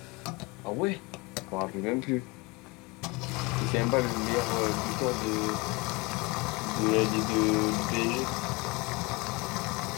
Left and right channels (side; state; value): right; quieter; 25.7 dB